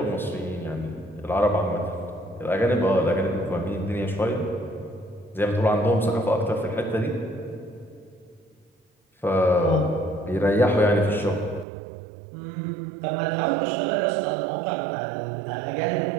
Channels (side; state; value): left; drops out; at 11.7 s